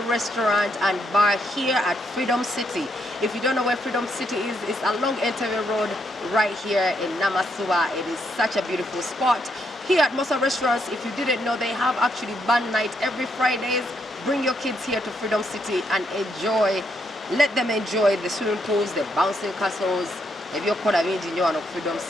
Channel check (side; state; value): both; normal; correlation 0.76